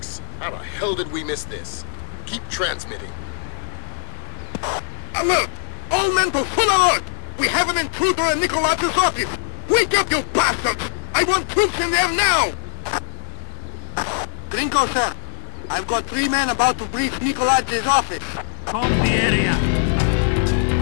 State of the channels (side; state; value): right; silent; digital silence